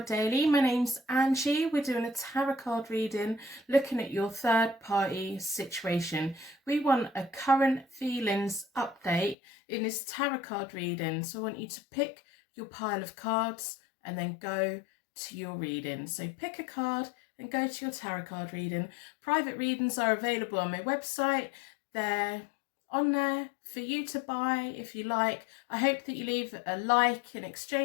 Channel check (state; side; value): drops out; right; at 9.3 s